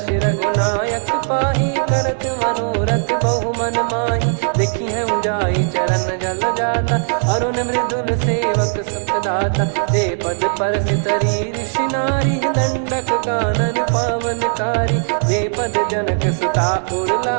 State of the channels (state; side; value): silent; left; 67 dB below the other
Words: रघुनायक पाहि, करत मनोरथ बहु मन माहि। देखी हूँ जाई चरण जल जाता, अरुण मृदुल सेवक सुखदाता। जे पद परसि तरी ऋषि नारी, दंडक कानन पावनकारी। जे पद जनक सुता उर